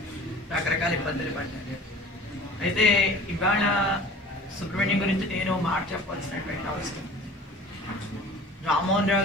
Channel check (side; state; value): both; normal; correlation 0.43